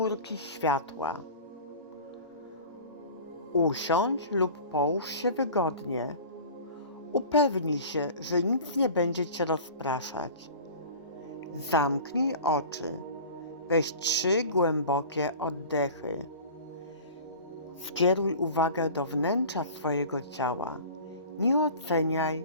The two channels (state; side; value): inverted; both; correlation -0.39